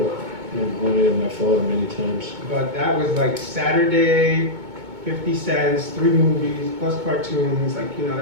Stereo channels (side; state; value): left; late; 2.2 ms